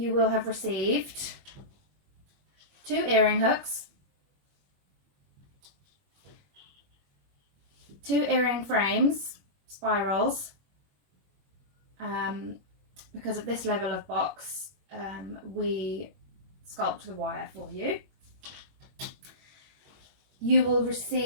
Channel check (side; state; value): left; late; 21 ms